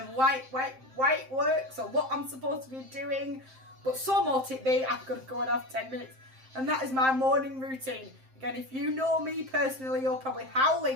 why it works or what I'm supposed to be doing. But so mote it be, I've got to go and have 10 minutes. And that is my morning routine. Again, if you know me personally, you're probably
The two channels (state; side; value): late; left; 7.6 ms